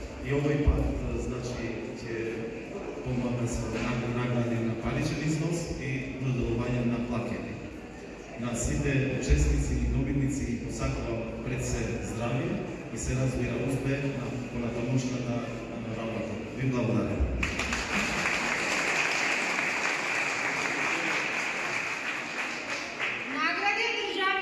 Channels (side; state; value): both; identical; correlation 1.00